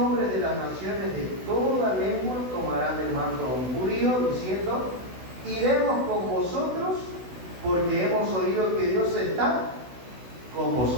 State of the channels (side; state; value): left; late; 16 ms